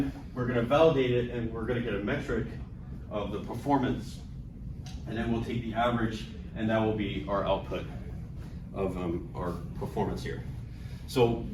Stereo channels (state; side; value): identical; both; correlation 1.00